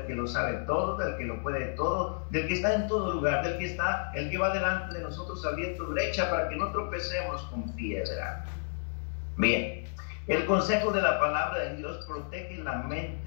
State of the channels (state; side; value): silent; right; digital silence